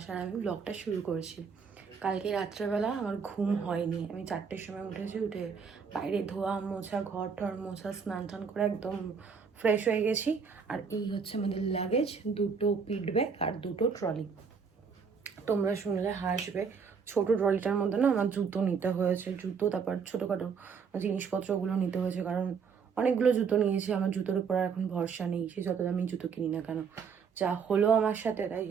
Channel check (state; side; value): quieter; left; 6.0 dB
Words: আর আমি ব্লগটা শুরু করেছি। কালকে রাত্রেবেলা আমার ঘুম হয়নি, আমি 4টের সময় উঠেছি। উঠে বাইরে ধোয়া মোছা, ঘর টর মোছা, স্নান টান করে একদম ফ্রেশ হয়ে গেছি। আর এই হচ্ছে আমাদের লাগেজ, 2টো পিট ব্যাগ আর 2টো ট্রলি। তোমরা শুনলে হাসবে, ছোট ট্রলিটার মধ্যে না আমার জুতো নিতে হয়েছে, জুতো তারপর ছোটোখাটো জিনিসপত্রগুলো নিতে হয়েছে, কারণ অনেকগুলো জুতো নিয়েছি। আমার জুতোর উপর আর এখন ভরসা নেই, সে যত দামি জুতো কিনি না কেন। যা হলো আমার সাথে তাই।